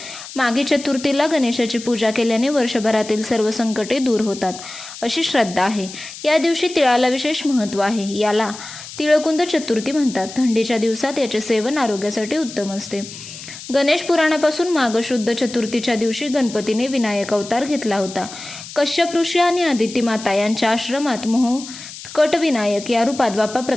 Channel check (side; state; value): left; noise; hiss, 13 dB below the sound